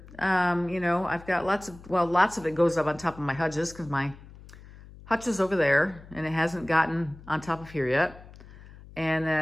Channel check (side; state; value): left; noise; hum, 19 dB below the sound